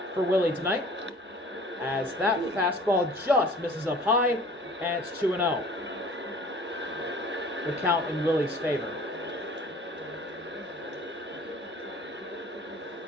for Willie tonight. As that fastball just misses up high, and it's 2-0. The count in Willie's favor.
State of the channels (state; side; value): normal; both; correlation 0.48